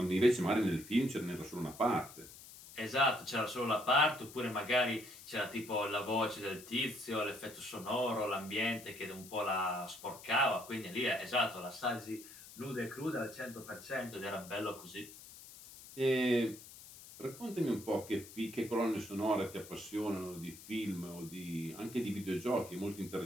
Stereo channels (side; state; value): left; noise; hiss, 17 dB below the sound